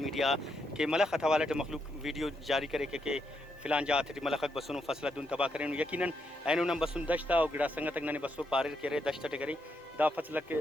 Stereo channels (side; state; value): both; normal; correlation 0.79